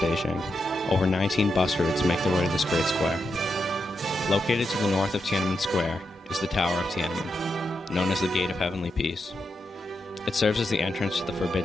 Over 19 bus routes make their way to this great square. Located to the north of Tiananmen Square is the Tower of Tiananmen, known as the Gate of Heavenly Peace. It serves as the entrance to the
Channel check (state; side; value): normal; both; correlation 0.85